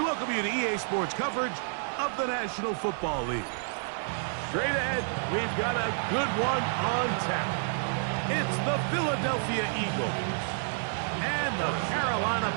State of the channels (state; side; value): silent; left; 58 dB below the other